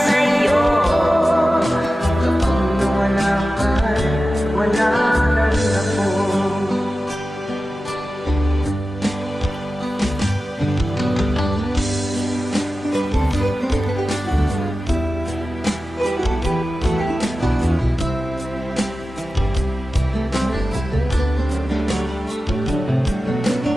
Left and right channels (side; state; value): both; normal; correlation 0.94